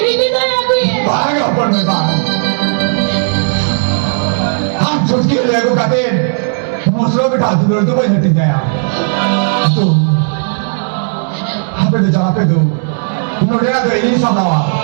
হিদি দয়া কইয়ে भाग अपन में बात हम छुटकी लेगो कहते मुसलो बिठा दूर तो वही हट जाया तो हमें तो जगह पे दो मुझे तो यही समझा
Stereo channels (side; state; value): left; silent; digital silence